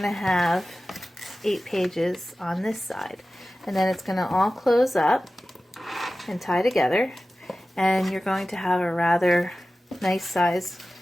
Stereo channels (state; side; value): normal; both; correlation 0.95